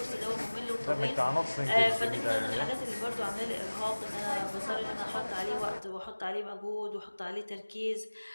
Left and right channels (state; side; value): inverted; both; correlation -1.00